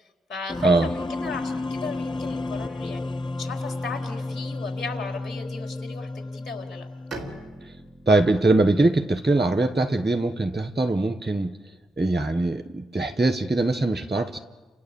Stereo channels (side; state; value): both; normal; correlation 0.84